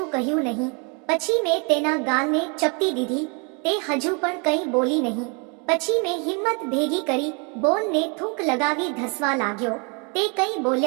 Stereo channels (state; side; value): quieter; left; 34.4 dB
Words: કહ્યું નહીં. પછી મેં તેના ગાલને ચપટી દીધી. તે હજુ પણ કંઈ બોલી નહીં. પછી મેં હિંમત ભેગી કરી, બોલને થૂંક લગાવી ધસવા લાગ્યો. તે કંઈ